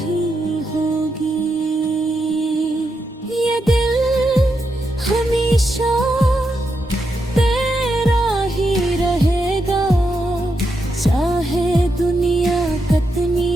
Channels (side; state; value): both; normal; correlation 0.84